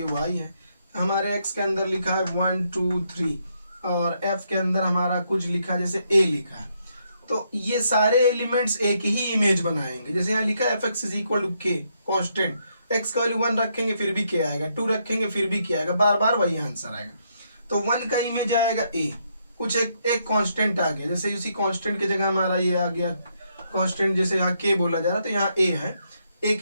y है, हमारे x के अंदर लिखा है 1 2 3 और f के अंदर हमारा कुछ लिखा है जैसे a लिखा है, तो ये सारे एलिमेंट्स एक ही इमेज बनाएंगे। जैसे यहाँ लिखा है fx = k कांस्टेंट, x का वैल्यू 1 रखेंगे फिर भी k आएगा, 2 रखेंगे फिर भी k आएगा, बार बार वही आंसर आएगा। तो 1 का इमेज आएगा a, कुछ एक कांस्टेंट आ गया, जैसे उसी कांस्टेंट की जगह हमारा ये आ गया कांस्टेंट, जैसे यहाँ k बोला जा रहा तो यहाँ a है, एक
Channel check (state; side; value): inverted; both; correlation -0.76